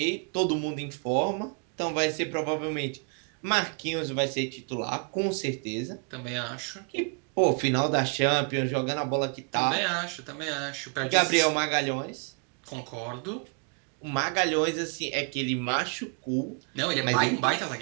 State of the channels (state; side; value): quieter; left; 38.3 dB